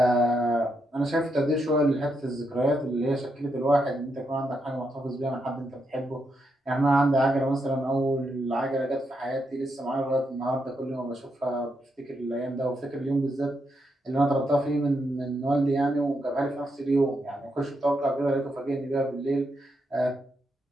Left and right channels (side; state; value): both; normal; correlation 0.81